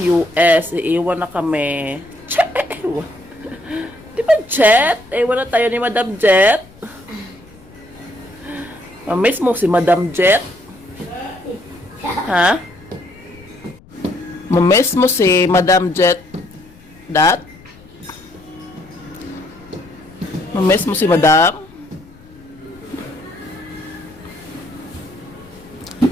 US, iiwan na kami. Di ba Jet? Iwan na tayo ni Madam Jet. Mamiss mo si Madam Jet? Ha? Mamiss mo si Madam Jet? Dat? Mamiss mo si Madam?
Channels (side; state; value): left; noise; rumble, 24 dB below the sound